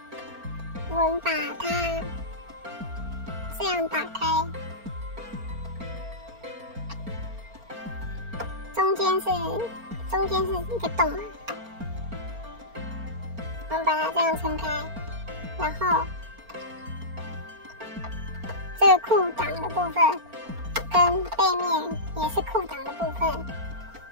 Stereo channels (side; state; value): left; late; 4.4 ms